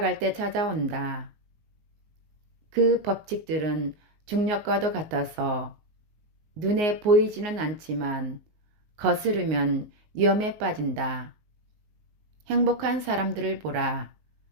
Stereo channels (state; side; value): late; left; 19 ms